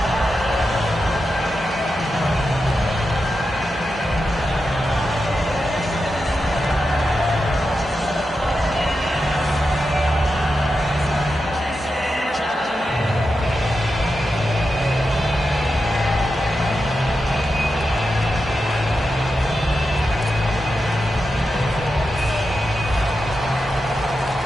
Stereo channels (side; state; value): both; normal; correlation 0.89